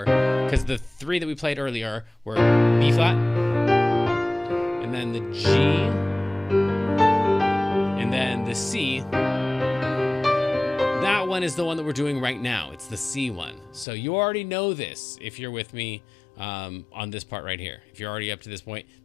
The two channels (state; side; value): drops out; right; at 13.9 s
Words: because the 3 that we played earlier were B flat, and then the G, and then the C. That one is the one that we're doing right now. It's the C one. So you already know this if you're with me on this part right here. If you're already up to this point,